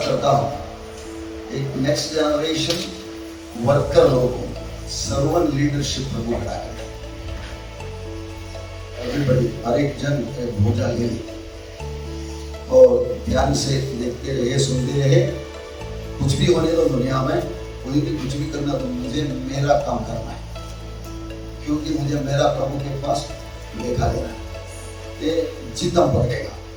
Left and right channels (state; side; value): identical; both; correlation 1.00